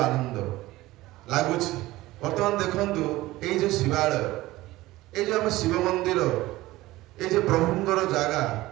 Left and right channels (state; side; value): quieter; left; 17.9 dB